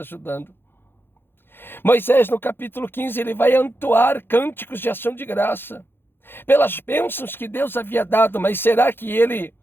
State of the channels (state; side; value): late; right; 0.10 ms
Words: Moisés, no capítulo 15, ele vai entoar cânticos de ação de graça pelas bênçãos que Deus havia dado. Mas será que